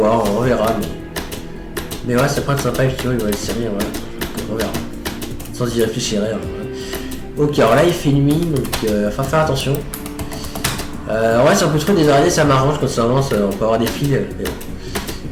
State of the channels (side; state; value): both; identical; correlation 1.00